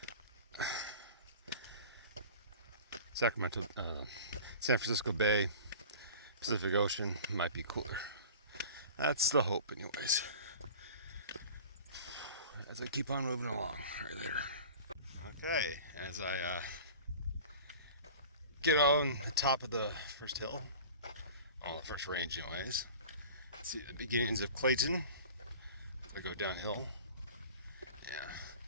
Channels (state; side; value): inverted; both; correlation -0.40